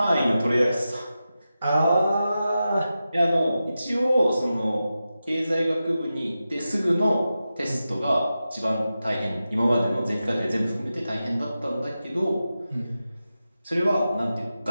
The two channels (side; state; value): both; inverted; correlation -0.92